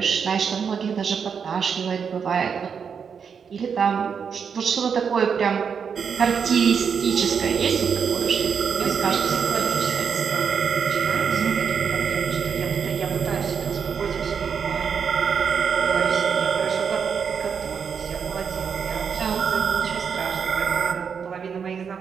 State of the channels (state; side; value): quieter; left; 6.7 dB